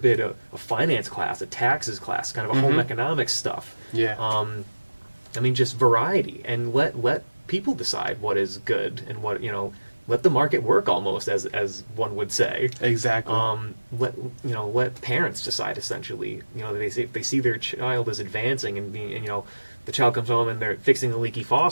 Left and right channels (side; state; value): both; inverted; correlation -1.00